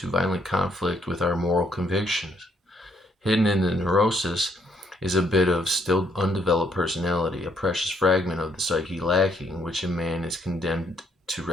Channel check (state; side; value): normal; both; correlation 0.70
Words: violent conflict with our moral convictions. Hidden in the neurosis is a bit of still undeveloped personality, a precious fragment of the psyche lacking, which in man is condemned to